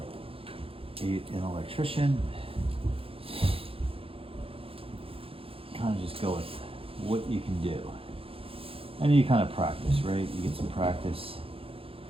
an electrician. Kind of just go with what you can do, and you kind of practice, right? You get some practice.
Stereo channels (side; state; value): left; late; 0.27 ms